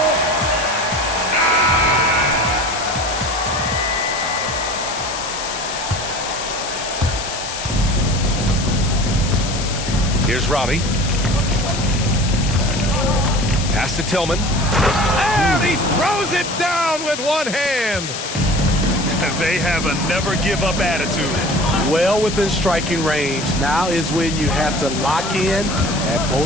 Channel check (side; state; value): left; noise; hiss, 7 dB below the sound